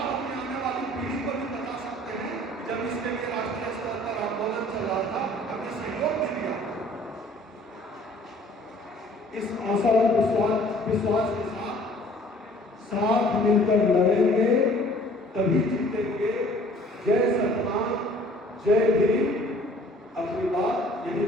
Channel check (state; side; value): normal; both; correlation 0.54